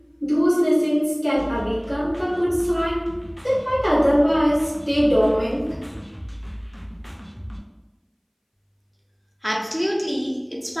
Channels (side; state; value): both; identical; correlation 1.00